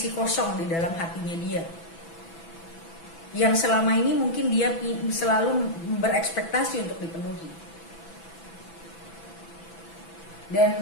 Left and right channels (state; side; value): late; right; 6.0 ms